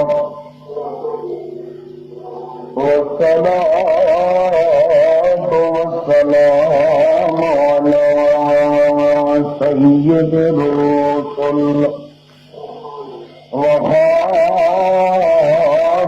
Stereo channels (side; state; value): both; identical; correlation 1.00